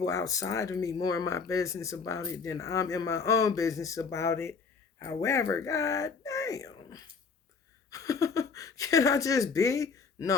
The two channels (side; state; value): right; quieter; 5.2 dB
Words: outside of me more in my business about it than I'm in my own business about it. However, god damn. Can I just be?